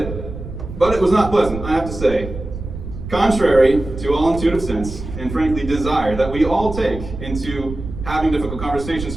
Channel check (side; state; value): right; noise; rumble, 9 dB below the sound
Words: but it was not pleasant, I have to say. Contrary to all intuitive sense, and frankly desire that we all take into having difficult conversations